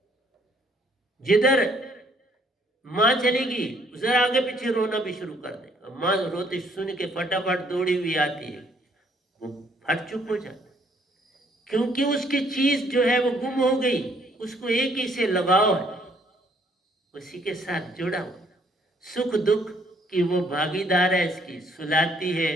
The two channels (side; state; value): both; normal; correlation 0.65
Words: जिधर मां चलेगी उधर आगे पीछे रोना भी शुरू कर देगा। मां रोते सुन के फटाफट दौड़ी हुई आती है, वो फट चुप हो जाता है, क्योंकि उसकी चीज जो है वो गुम हो गई। उसको एक ही से लगाव है, उसी के साथ जुड़ा हुआ, सुख दुख की वो भागीदार है। इसकी सुलाती